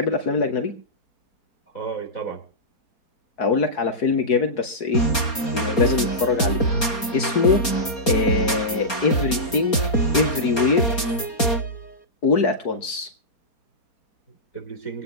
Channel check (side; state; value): right; late; 4.3 ms